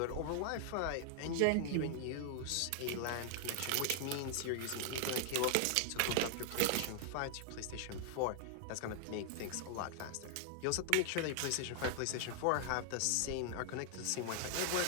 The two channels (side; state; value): both; different; correlation 0.00